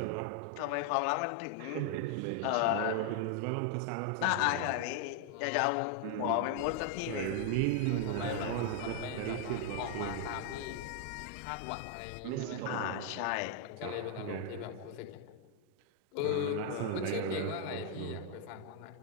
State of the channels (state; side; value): different; both; correlation 0.00